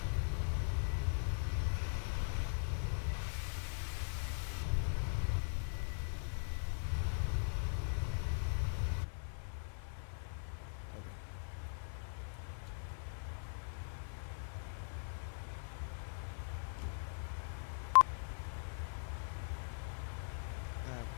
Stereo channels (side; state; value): right; silent; digital silence